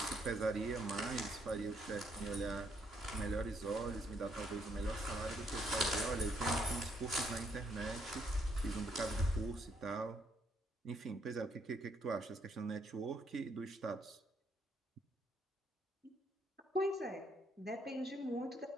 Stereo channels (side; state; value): both; normal; correlation 0.72